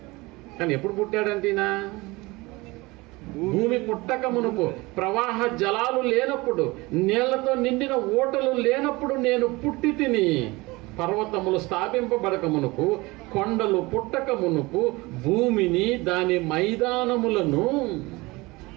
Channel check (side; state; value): left; quieter; 22.7 dB